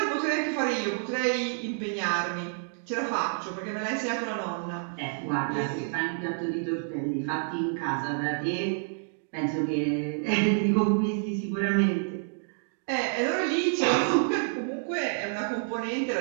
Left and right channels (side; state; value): left; silent; digital silence